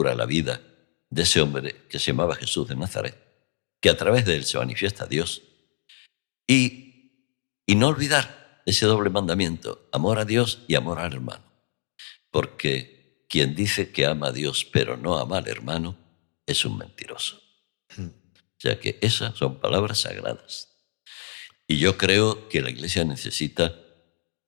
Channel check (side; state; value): right; silent; digital silence